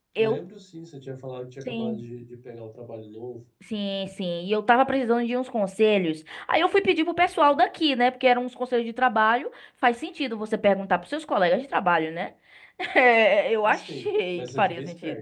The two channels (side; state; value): both; identical; correlation 1.00